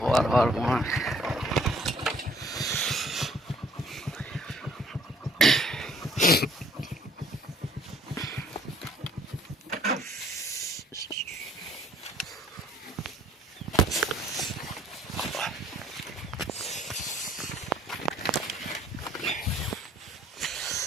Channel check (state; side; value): normal; both; correlation 0.59